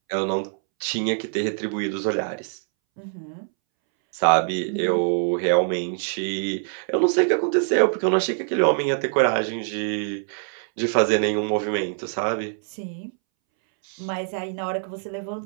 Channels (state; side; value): silent; left; 63 dB below the other